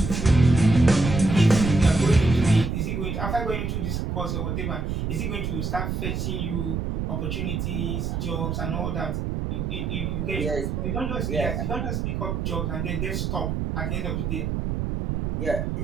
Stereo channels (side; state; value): right; noise; rumble, 2 dB below the sound